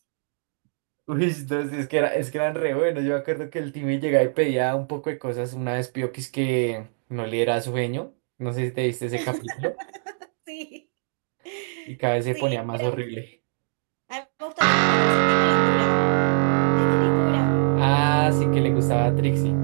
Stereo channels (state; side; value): silent; left; digital silence